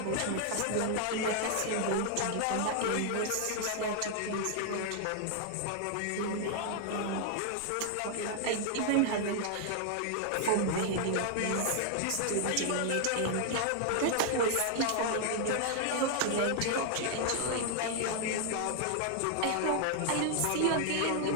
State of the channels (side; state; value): both; different; correlation 0.00